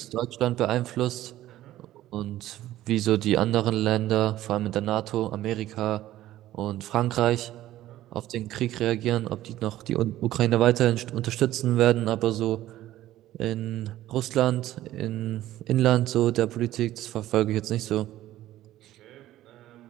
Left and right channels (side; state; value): left; quieter; 14.3 dB